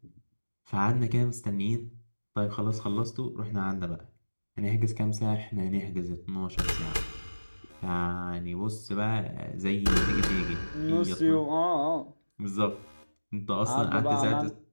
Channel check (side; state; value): both; inverted; correlation -1.00